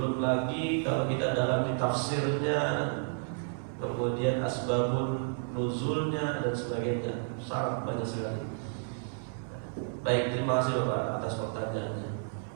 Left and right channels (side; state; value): left; silent; digital silence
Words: lagi kalau kita dalam tafsirnya, kemudian asbabun nuzulnya dan sebagainya, sangat banyak sekali. Baik, terima kasih Bapak atas pertanyaannya.